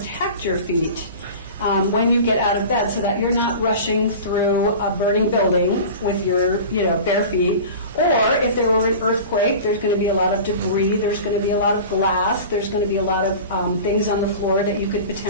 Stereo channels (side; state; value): both; inverted; correlation -0.36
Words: your feet when you get out of bed, so that you're not rushing through a burning building with your bare feet. Or if there were an earthquake, there's going to be a lot of debris, there's going to be a lot of glass, there's going to be a lot of things on the floor that you could